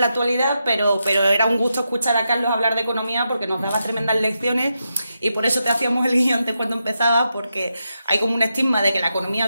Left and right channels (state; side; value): inverted; both; correlation -0.86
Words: la actualidad, pero era un gusto escuchar a Carlos hablar de economía porque nos daba tremendas lecciones y por eso te hacíamos el guión antes cuando empezaba, porque hay como un estigma de que la economía